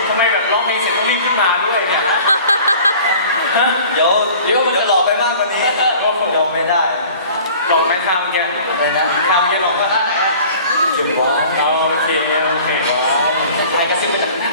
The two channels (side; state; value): both; inverted; correlation -0.46